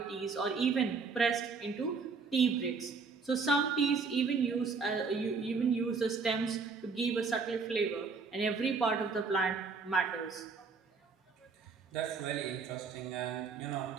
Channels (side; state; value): left; quieter; 4.9 dB